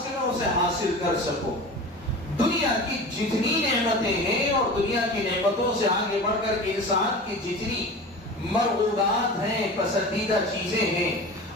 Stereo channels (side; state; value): both; normal; correlation 0.34